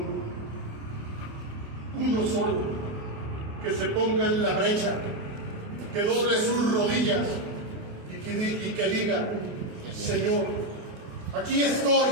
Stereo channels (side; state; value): left; late; 28 ms